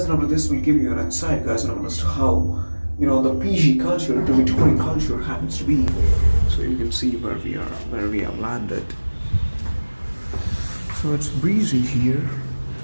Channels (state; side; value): inverted; both; correlation -1.00